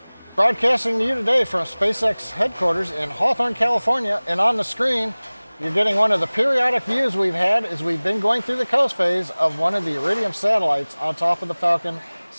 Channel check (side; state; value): both; inverted; correlation -1.00